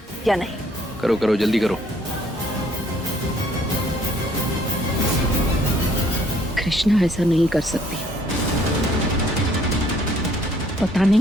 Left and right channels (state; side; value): normal; both; correlation 0.63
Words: या नहीं। करो करो, जल्दी करो। कृष्णा ऐसा नहीं कर सकती। पता